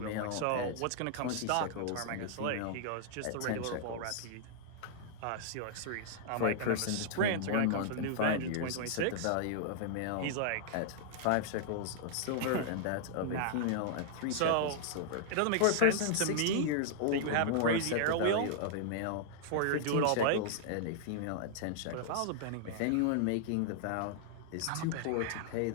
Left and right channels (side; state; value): both; different; correlation -0.01